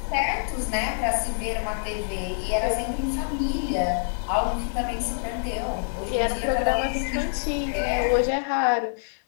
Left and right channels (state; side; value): silent; right; digital silence